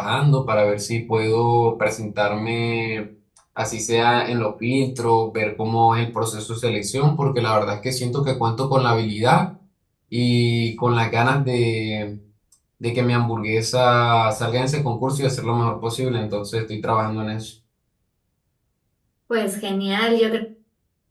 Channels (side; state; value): both; identical; correlation 1.00